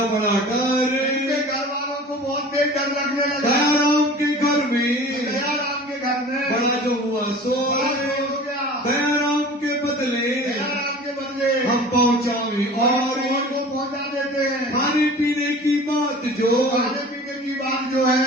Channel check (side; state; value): both; normal; correlation 0.41